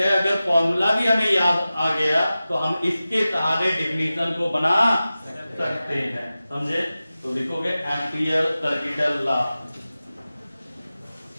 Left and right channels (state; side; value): inverted; both; correlation -0.95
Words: अगर फॉर्मूला भी हमें याद आ गया तो हम इसके सहारे डिफिनेशन को बना सकते हैं। समझे? तो लिखोगे एम्पियर सर्किटल लॉ,